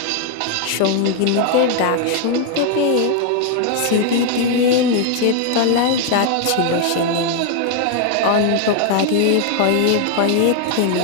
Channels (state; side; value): different; both; correlation 0.00